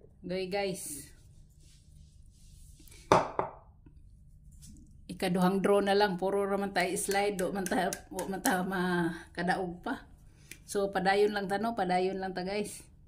Guys, ikaduhang draw na lang, puro raman tayo slide, do man tayo makadaog pa. So padayon lang ta guys.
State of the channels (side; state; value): both; identical; correlation 1.00